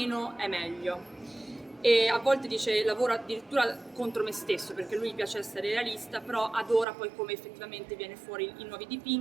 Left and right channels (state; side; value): drops out; left; at 6.9 s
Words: è meglio. E a volte dice lavoro addirittura contro me stesso, perché lui gli piace essere realista, però adora poi come effettivamente viene fuori i nuovi